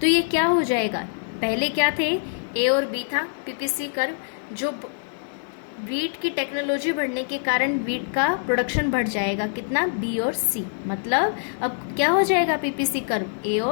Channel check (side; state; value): right; silent; 62 dB below the other